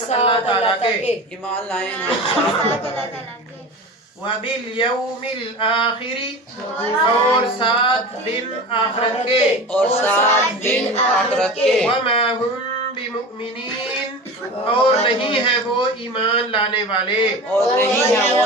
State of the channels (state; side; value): normal; both; correlation 0.32